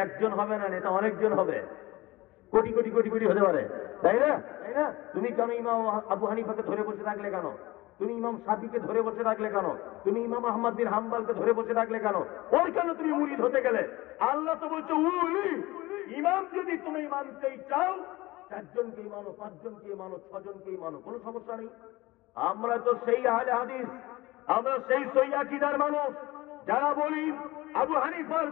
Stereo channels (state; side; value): quieter; right; 19.8 dB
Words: একজন হবে না, নেতা অনেকজন হবে, কোটি কোটি কোটি কোটি হতে পারে, তাই না? তাই না? তুমি কেন ইমাম আবু হানিফাকে ধরে বসে রাখলে কেন? তুমি ইমাম শাফিকে ধরে বসে রাখলে কেন? তুমি ইমাম আহমদ বিন হাম্বলকে ধরে বসে রাখলে কেন? ওর কেন তুমি মুরিদ হতে গেলে? আল্লাহ তো বলছে উলি। ইমাম যদি তুমি মানতেই চাও, 4 জনকেই মানো, 5 জনকেই মানো, 6 জনকেই মানো, কোনো সমস্যা নেই। আমরা তো সেই আহলে হাদিস, আমরা সেই সহি আকীদার মানুষ, যারা বলি আবু হানিফার